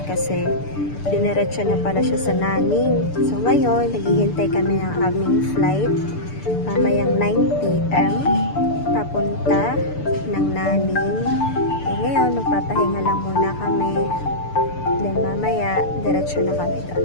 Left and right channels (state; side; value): late; right; 6.8 ms